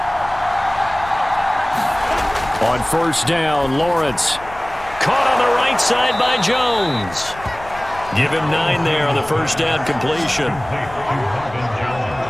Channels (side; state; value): left; noise; rumble, 17 dB below the sound